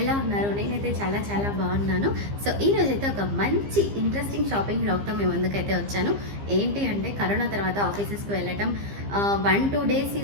ఎలా ఉన్నారు? నేనైతే చాలా చాలా బాగున్నాను. సో ఈరోజైతే ఒక మంచి ఇంట్రెస్టింగ్ షాపింగ్ బ్లాగ్తో మేము ముందుకైతే వచ్చాను. ఏంటి అంటే కరోనా తర్వాత ఆఫీసెస్కి వెళ్ళటం 1-2 డేస్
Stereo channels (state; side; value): late; left; 15 ms